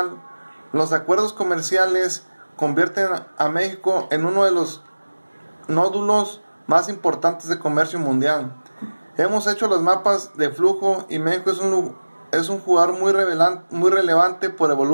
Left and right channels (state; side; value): inverted; both; correlation -1.00